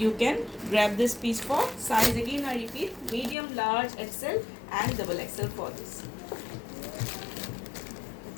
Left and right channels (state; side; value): drops out; right; at 3.4 s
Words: can grab this piece for size, again I repeat, medium, large, XL and double XL for this.